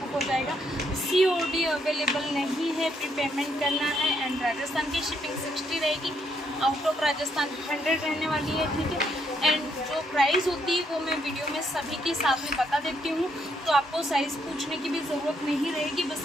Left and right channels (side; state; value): both; normal; correlation 0.74